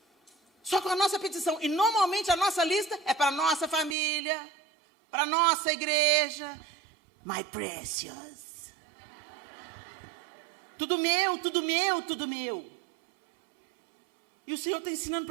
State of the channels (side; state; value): left; drops out; at 4.0 s